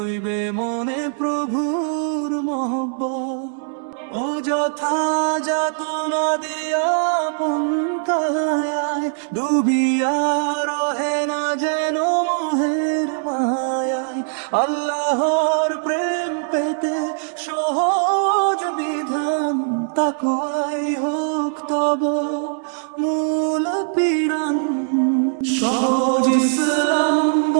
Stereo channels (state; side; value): silent; left; 63 dB below the other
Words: মনে প্রভুর মহব্বত। ও যথা যাতনা দিয়া পন্থায়, ডুবিয়া রহে না যেন মোহের মায়ায়। আল্লাহর প্রেম পেতে সহজ বিধান, তাকওয়াই হোক তব মূল পিরান। সহজ ইসলাম